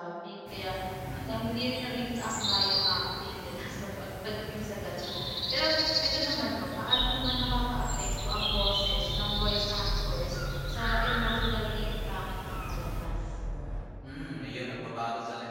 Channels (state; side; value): identical; both; correlation 1.00